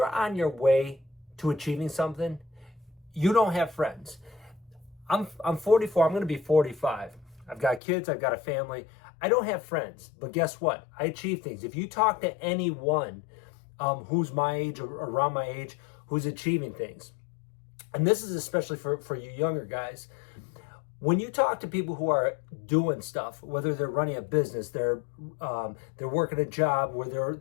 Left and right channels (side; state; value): right; drops out; at 7.8 s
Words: on your way to achieving something, you don't have friends. I'm 44. I'm going to be 45. I've got kids. I've got a family. I don't have friends. But guess what? I achieve things. If you talk to anyone who's my age or around my age who's achieving things, and this is especially for you younger guys, when you talk to people who are doing stuff, whether they're running a business, they're working a job where